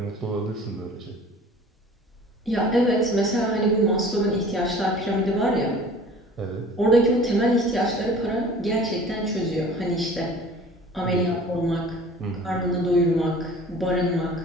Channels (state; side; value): normal; both; correlation 0.46